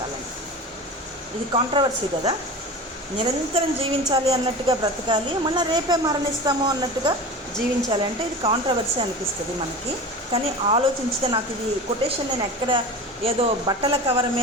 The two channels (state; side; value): normal; both; correlation 0.32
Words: ఇది కాంట్రవర్సీ కదా. నిరంతరం జీవించాలి అన్నట్టుగా బ్రతకాలి, మళ్ళీ రేపే మరణిస్తాము అన్నట్టుగా జీవించాలి అంటే ఇది కాంట్రవర్సీ అనిపిస్తుంది మనకి. కానీ ఆలోచించితే, నాకు ఇది కొటేషన్ నేను ఎక్కడ ఏదో బట్టల కవర్